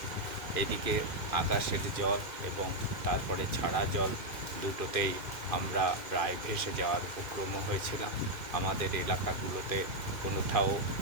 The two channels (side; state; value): left; late; 2.4 ms